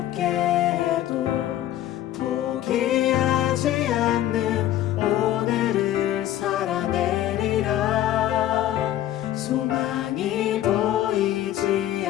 해도 포기하지 않는 오늘을 살아내리라. 소망이 보이지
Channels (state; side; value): quieter; right; 12.9 dB